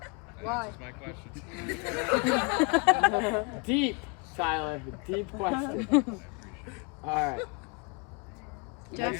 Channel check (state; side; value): quieter; right; 31.1 dB